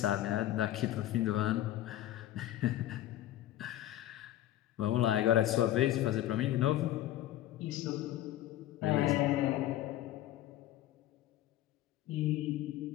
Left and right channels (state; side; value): quieter; right; 13.6 dB